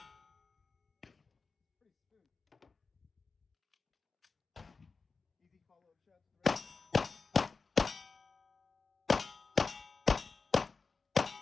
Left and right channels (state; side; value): quieter; right; 4.5 dB